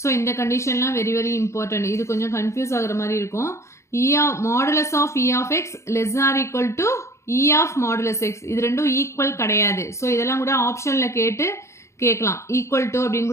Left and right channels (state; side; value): late; right; 0.14 ms